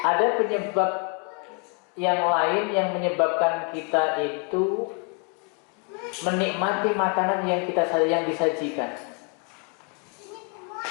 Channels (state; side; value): quieter; right; 35.3 dB